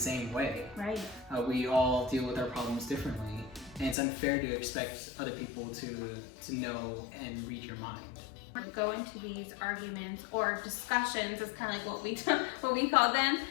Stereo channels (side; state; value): right; drops out; at 4.0 s